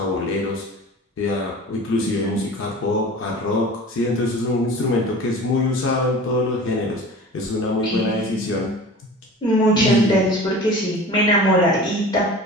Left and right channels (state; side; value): normal; both; correlation 0.38